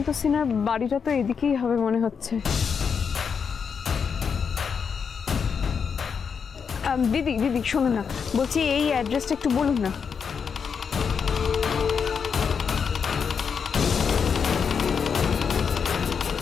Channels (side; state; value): right; quieter; 6.4 dB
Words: সিনহার বাড়িটা তো এদিকেই হবে মনে হচ্ছে। দিদি দিদি শোনো না, বলছি এই অ্যাড্রেসটা একটু বলুন না।